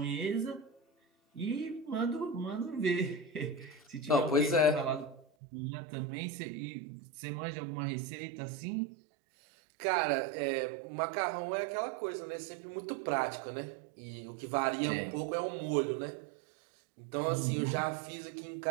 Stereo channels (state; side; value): drops out; left; at 5.2 s